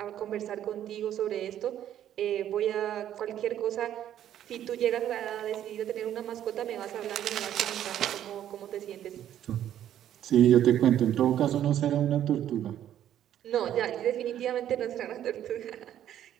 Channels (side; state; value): left; quieter; 11.1 dB